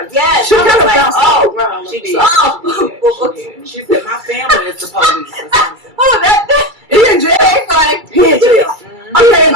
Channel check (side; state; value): left; late; 2.3 ms